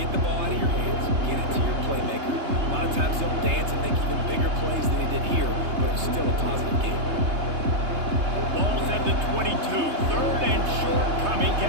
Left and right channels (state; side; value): late; left; 3.3 ms